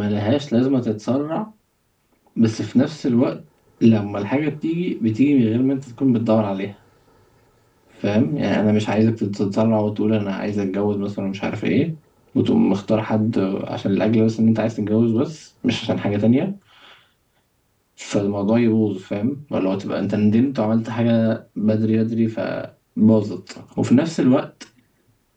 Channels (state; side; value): identical; both; correlation 1.00